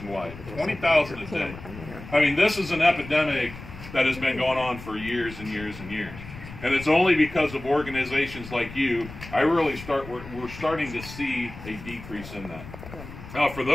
20,000 a day. I mean, this is an epidemic that has been going on for years and years and years. And it's only because of organizations like you, we're starting to see a decrease in that. Now, for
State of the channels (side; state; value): left; noise; rumble, 14 dB below the sound